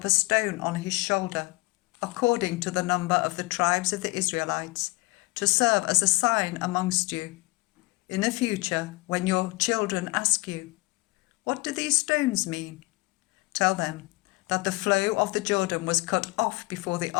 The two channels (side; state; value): right; quieter; 22.6 dB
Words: a stone on his shoulder, according to the number of the tribes of the Israelites, to serve as a sign amongst you. In the future, when your children ask you, 'What do these stones mean?' tell them that the flow of the Jordan was cut off before the